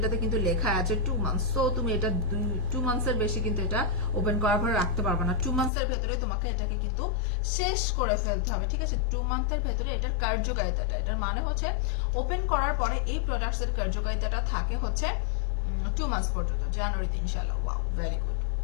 কিন্তু লেখা আছে 2 মান্থস। সো তুমি এটা 2 মান্থসের বেশি কিন্তু এটা ওপেন করার পরে রাখতে পারবে না। 2 মান্থসের ভেতরে তোমাকে এটাকে কিন্তু শেষ করে ফেলতে হবে, ঠিক আছে? 2 মান্থের ভেতরে এটার কার্যকারিতাটা, এটার মানে হচ্ছে ওপেন করার পরে এই প্রোডাক্টস এর কার্যকারিতাটা থাকে হচ্ছে 2 মান্থস পর্যন্ত, জানুয়ারিতে ইনশাআল্লাহ। ওয়াও, ভেরি গুড,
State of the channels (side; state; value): right; drops out; at 5.7 s